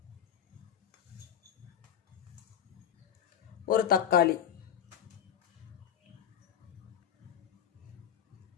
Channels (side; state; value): right; quieter; 9.4 dB